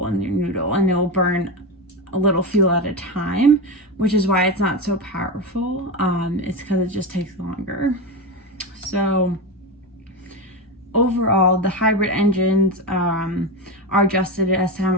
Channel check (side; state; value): both; normal; correlation 0.16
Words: in your noodle, and it will burn a little fuel at a time, which is why it's not so powerful. It's because it just takes longer. So overall, the hybrid engines are adjusted as to how